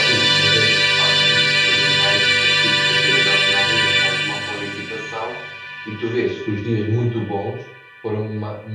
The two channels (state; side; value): identical; both; correlation 1.00